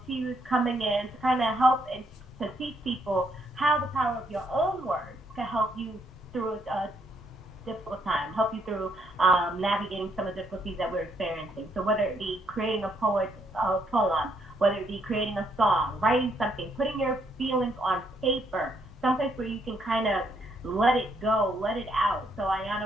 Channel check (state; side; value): normal; both; correlation 0.73